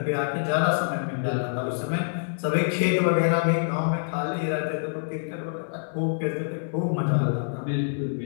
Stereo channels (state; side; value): silent; right; digital silence